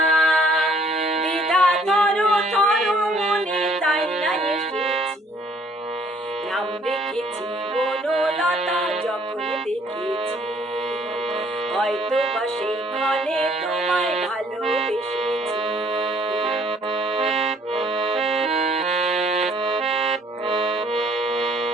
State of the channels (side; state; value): both; normal; correlation 0.61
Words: দ্বিধা থর মনে তাই না এসেছি। নাম রেখেছি বনলতা যখন দেখেছি, হয়তো বা সেইখানে তোমায় ভালোবেসেছি।